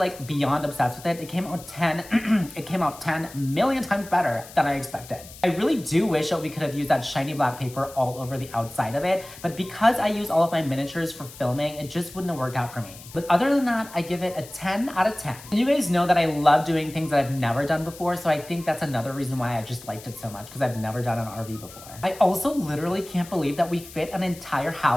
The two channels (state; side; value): noise; left; hiss, 18 dB below the sound